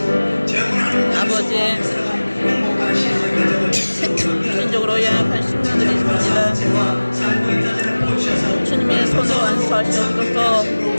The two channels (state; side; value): inverted; both; correlation -1.00